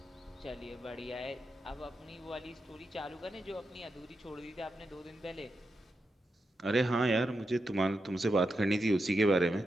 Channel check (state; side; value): normal; both; correlation 0.87